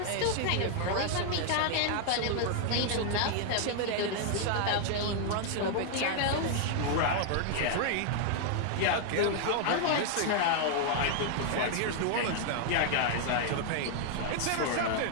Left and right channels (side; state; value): both; different; correlation 0.00